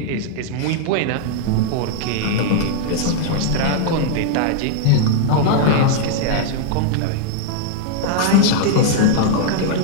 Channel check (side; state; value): both; different; correlation -0.01